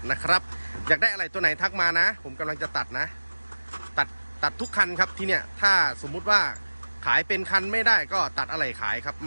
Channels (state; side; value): inverted; both; correlation -1.00